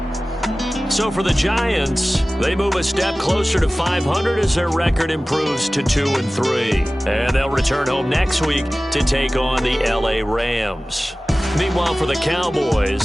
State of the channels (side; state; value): both; normal; correlation 0.97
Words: So for the Giants, they move a step closer to 500 as their record improves to 2-3. And they'll return home next week to take on the LA Rams. Meanwhile, for the